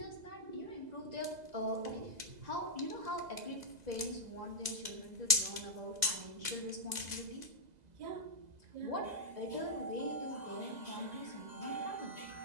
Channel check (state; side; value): late; left; 2.0 ms